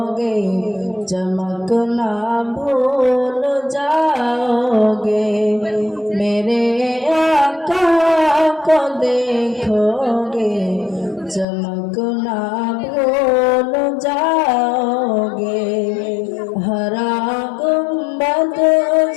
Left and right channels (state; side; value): drops out; right; at 11.5 s